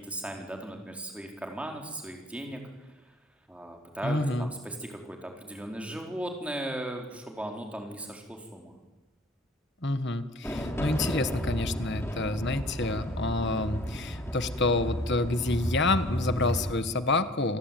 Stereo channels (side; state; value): both; normal; correlation 0.51